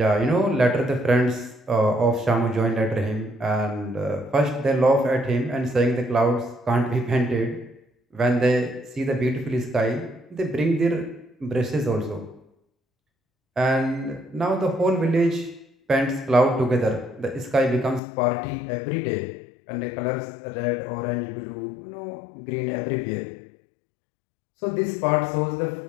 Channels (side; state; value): right; drops out; at 18.0 s